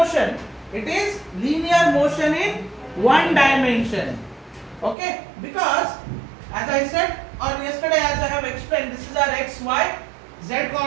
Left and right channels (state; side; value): drops out; left; at 5.0 s